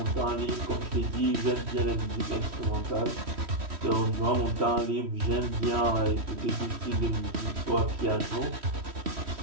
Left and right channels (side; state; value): left; late; 3.1 ms